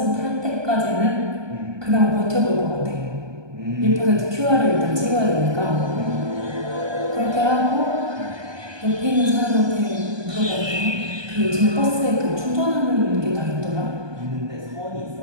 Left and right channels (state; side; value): late; left; 1.2 ms